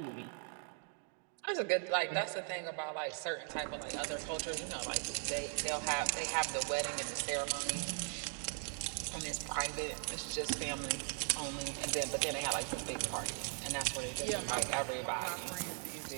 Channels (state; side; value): silent; left; 52 dB below the other